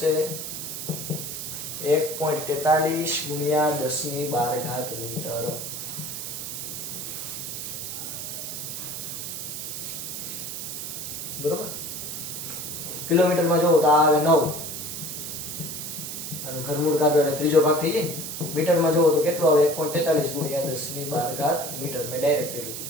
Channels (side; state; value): right; noise; hiss, 6 dB below the sound